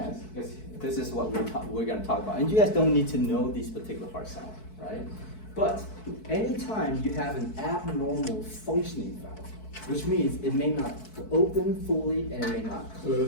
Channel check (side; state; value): right; late; 4.6 ms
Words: because this is what we're gonna talk about. And you guys don't need to know these particular heart sounds, right? But anytime you have an abnormal functioning valve, which means it may not open fully and it may not